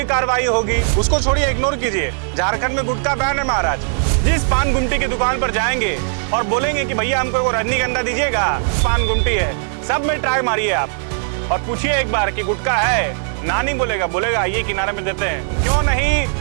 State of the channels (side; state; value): left; silent; digital silence